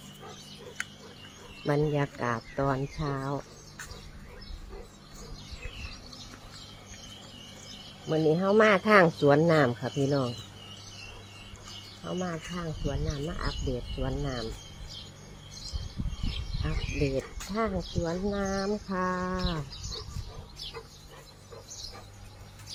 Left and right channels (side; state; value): both; identical; correlation 1.00